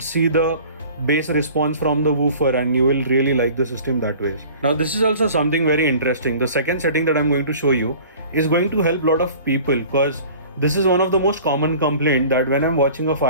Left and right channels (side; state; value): both; inverted; correlation -0.45